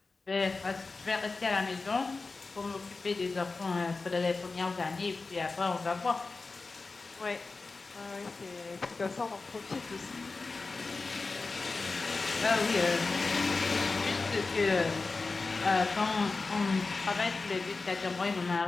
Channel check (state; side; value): quieter; right; 3.9 dB